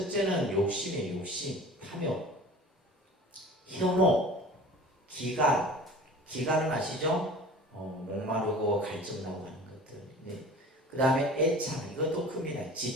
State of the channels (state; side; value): normal; both; correlation 0.41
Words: 욕심이에요. 욕심, 탐욕, 혐오, 기간. 기간은 아시죠? 목마르고 갈증나고 하는 것들. 네. 그 다음에 애착, 이것도 큽니다.